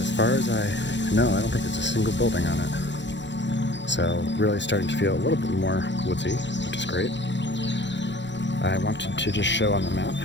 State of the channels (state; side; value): late; right; 0.53 ms